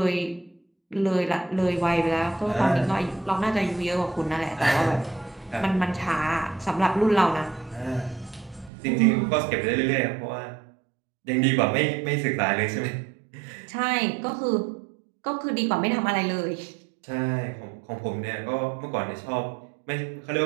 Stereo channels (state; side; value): drops out; left; at 8.7 s